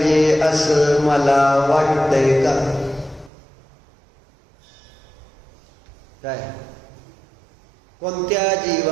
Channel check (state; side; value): drops out; left; at 3.3 s